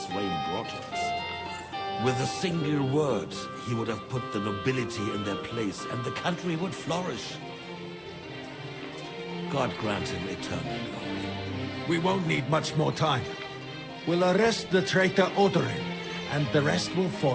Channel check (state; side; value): identical; both; correlation 1.00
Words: reign brought to us. With a single word, he would have put the nobility in their place, and the country would flourish. God grant him eternal glory. We won't need much more time. We'll arrest the traitor Odorin, and the rest will